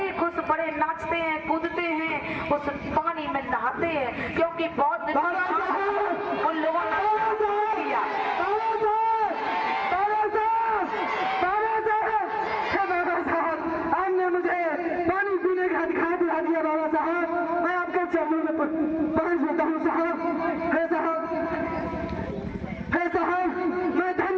खुश, बड़े नाचते हैं, कूदते हैं, उस पानी में नहाते हैं, क्योंकि बहुत दिन उन लोगों ने किया। आपने मुझे पानी पीने का अधिकार दिला दिया बाबा साहब, मैं आपके चरणों में पहुंच जाता हूँ साहब। है साहब, मैं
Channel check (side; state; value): both; identical; correlation 1.00